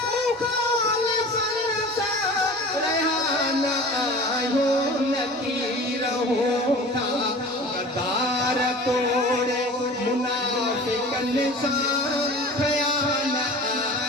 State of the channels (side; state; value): both; normal; correlation 0.39